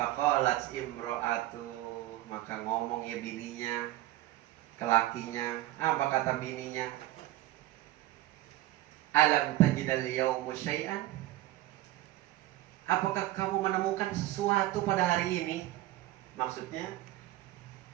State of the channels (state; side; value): quieter; left; 16.0 dB